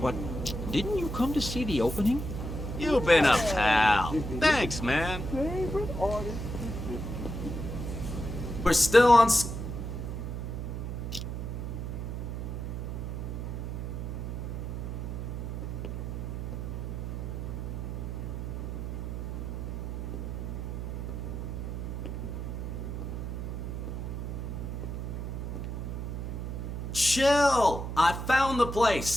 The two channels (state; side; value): noise; right; hum, 4 dB below the sound